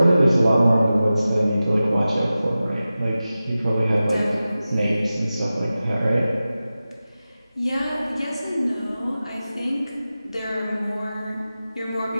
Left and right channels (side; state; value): both; inverted; correlation -0.95